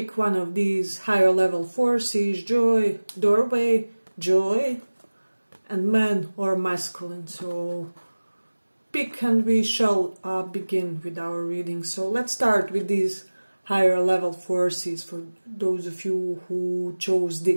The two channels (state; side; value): inverted; both; correlation -1.00